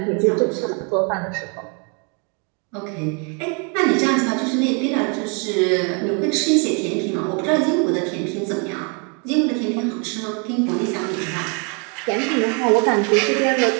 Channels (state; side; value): quieter; left; 36.0 dB